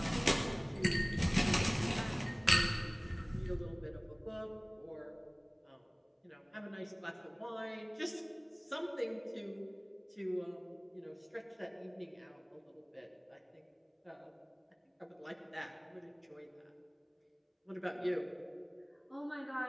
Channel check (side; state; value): both; identical; correlation 1.00